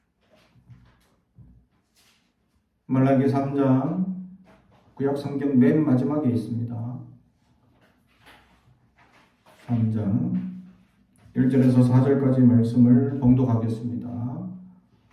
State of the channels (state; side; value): identical; both; correlation 1.00